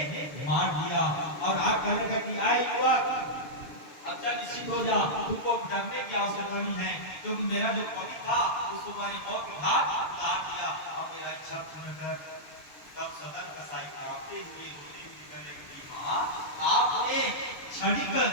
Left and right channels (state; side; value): late; right; 6.7 ms